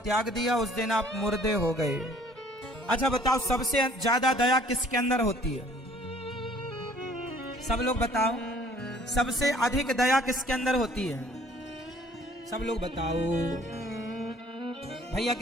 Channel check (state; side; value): normal; both; correlation 0.56